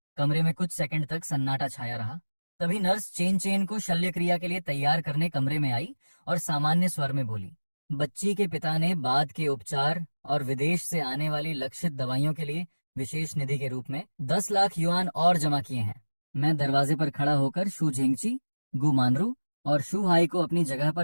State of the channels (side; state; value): both; inverted; correlation -1.00